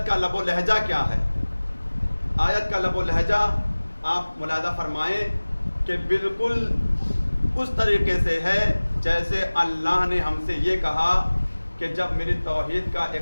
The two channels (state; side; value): inverted; both; correlation -1.00